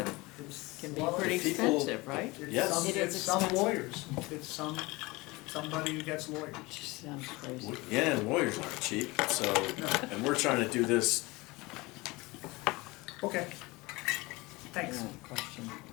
Can be Well, pretty people- expensive, right? It's Yes. some- It is It's some expensive. lawyers, it's somebody who gets lawyers. Just sounds crazy. Yeah, and lawyers aren't cheap, so, and we're trying to do this. Okay. Thanks. Yeah, question.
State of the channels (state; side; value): quieter; right; 22.9 dB